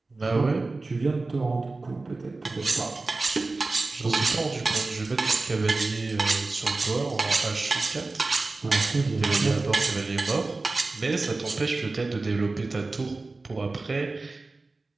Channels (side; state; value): left; quieter; 3.4 dB